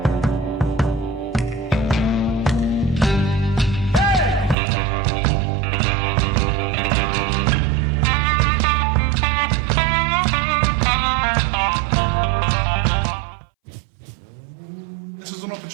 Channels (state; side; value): drops out; left; at 4.5 s